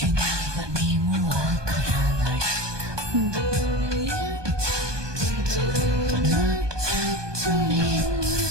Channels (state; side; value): late; left; 1.2 ms